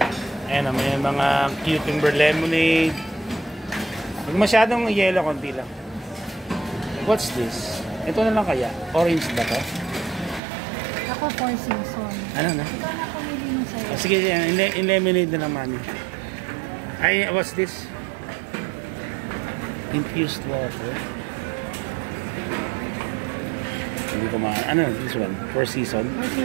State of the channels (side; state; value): left; drops out; at 10.4 s